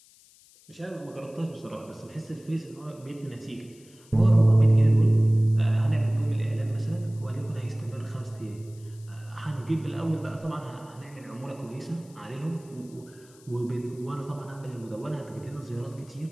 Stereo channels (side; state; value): left; noise; hiss, 26 dB below the sound